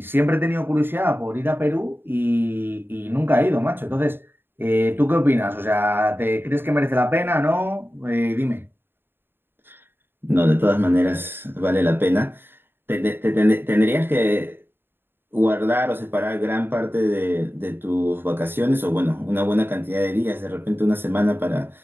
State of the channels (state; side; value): late; left; 0.10 ms